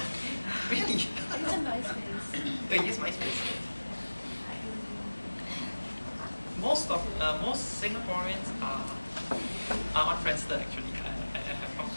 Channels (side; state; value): both; inverted; correlation -1.00